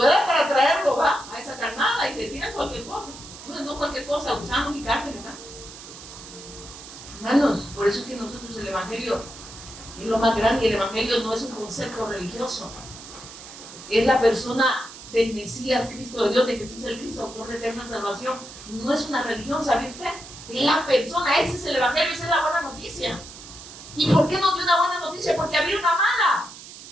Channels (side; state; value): right; noise; hiss, 15 dB below the sound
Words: eras para traerlo, va, a esa carnada y le tiran cualquier cosa. No cualquier cosa, gusanos y carne, ¿verdad? Hermanos, por eso es que nosotros el Evangelio es lo más grande, y el Evangelio no es un concepto religioso. Es la persona del Mesías, Cristo de Dios, de Jesús el Cristo, autor de eterna salvación. No es una religión, ¿sabe usted? Es la persona, ese es el Evangelio, esa es la buena noticia. ¿Y por qué nos dio una buena noticia? Porque había una mala.